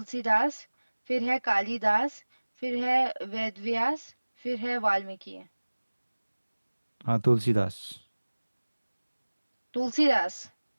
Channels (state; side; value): inverted; both; correlation -1.00